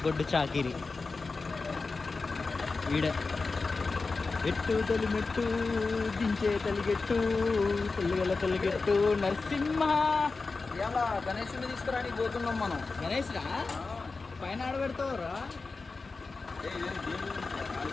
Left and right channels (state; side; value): quieter; right; 4.0 dB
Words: గొడ్డు చాకిరి. వీడే ఎట్టు తొలిమెట్టు, దించే తలిగెట్టు, తొలిగెట్టు నరసింహ. ఇలా గణేషుని తీసుకురానికి పోతున్నాం మనం. గణేష్ రా, పైన ఆడబెడతావురా.